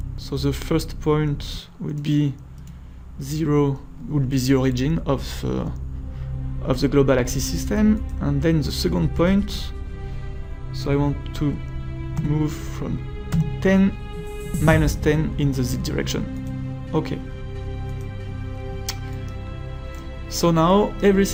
So the first point would be zero, would be the origin of the global axis system, and then the second point. So I want to move from 10 minus 10 in the Z direction. Okay. So now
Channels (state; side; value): identical; both; correlation 1.00